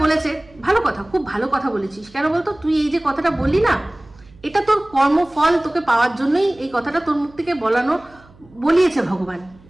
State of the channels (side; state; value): right; noise; hum, 26 dB below the sound